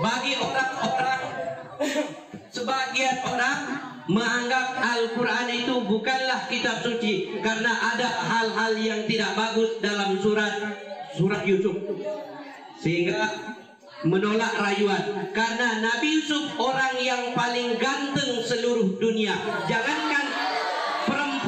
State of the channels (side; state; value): both; identical; correlation 1.00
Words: orang-orang, sebagian orang menganggap Al-Quran itu bukanlah kitab suci karena ada hal-hal yang tidak bagus dalam surat Yusuf, sehingga menolak rayuan. Karena Nabi Yusuf orang yang paling ganteng seluruh dunia. Jangankan